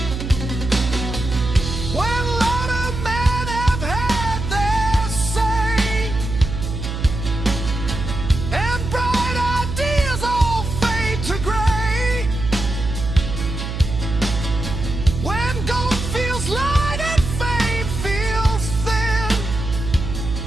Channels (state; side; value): noise; right; hum, 5 dB below the sound